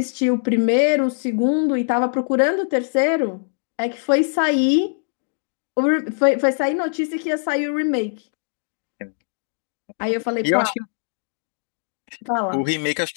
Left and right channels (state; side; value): silent; right; digital silence